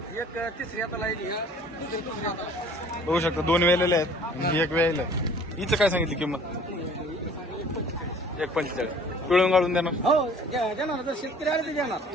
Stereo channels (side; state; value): both; normal; correlation 0.51